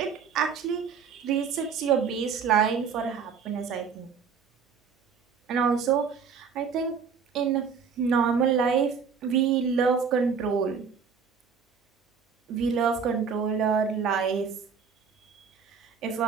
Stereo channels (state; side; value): quieter; left; 6.2 dB